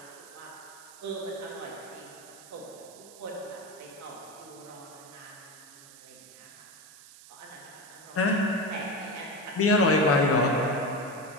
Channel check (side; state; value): right; noise; hiss, 19 dB below the sound